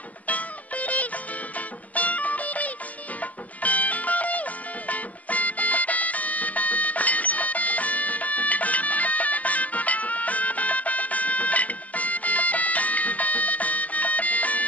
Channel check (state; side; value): late; right; 0.075 ms